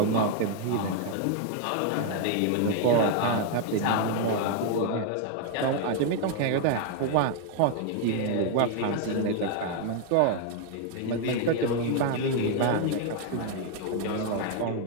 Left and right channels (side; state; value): both; different; correlation 0.00